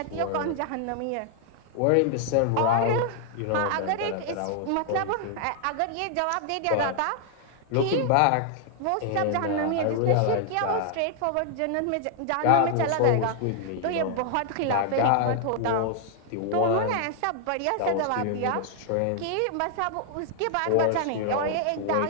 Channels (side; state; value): both; different; correlation 0.00